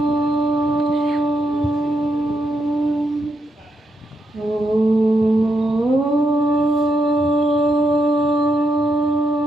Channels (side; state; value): both; normal; correlation 0.80